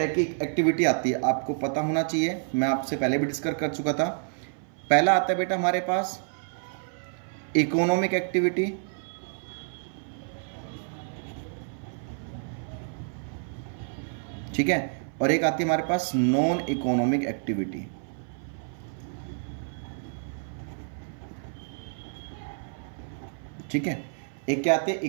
की एक्टिविटी आती है, आपको पता होना चाहिए, मैं आपसे पहले भी डिस्कस कर चुका था। पहला आता है बेटा हमारे पास इकोनॉमिक एक्टिविटी, ठीक है, और एक आती है हमारे पास नॉन इकोनॉमिक एक्टिविटी। ठीक है, एक क्या आती है?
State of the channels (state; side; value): silent; left; 56 dB below the other